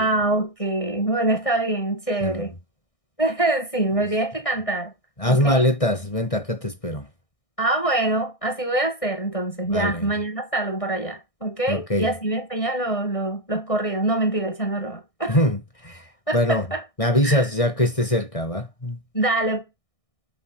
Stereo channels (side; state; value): right; late; 1.6 ms